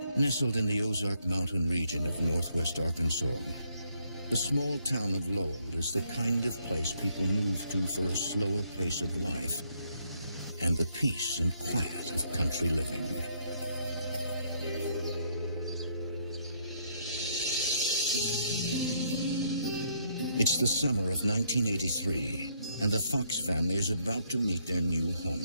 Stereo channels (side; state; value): both; inverted; correlation -0.72